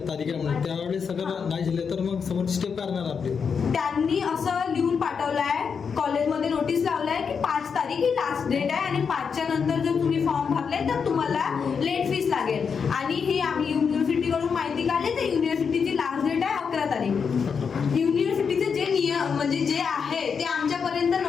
तारीख आहे म्हणून त्यावेळेस सगळं नाही झाले तर मग समोरची स्टेप करणार आपली. त्यांनी असं लिहून पाठवलंय, कॉलेजमध्ये नोटीस लावलाय की 5 तारीख ही लास्ट डेट आहे आणि 5च्या नंतर जर तुम्ही फॉर्म भरले तर तुम्हाला लेट फीस लागेल. आणि हे आम्ही युनिव्हर्सिटीकडून माहिती काढली तर युनिव्हर्सिटीची लास्ट डेट आहे 11 तारीख. युनिव्हर्सिटीचे जे नियम म्हणजे जे आहे ते आमच्यापर्यंत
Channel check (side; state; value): right; quieter; 6.2 dB